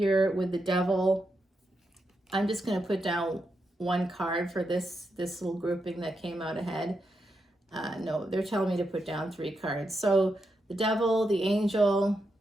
with the Devil, I'm just going to put down one card for this little grouping that came out ahead. No, they're telling me to put down 3 cards. So the Devil, the Angel,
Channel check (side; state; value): both; normal; correlation 0.84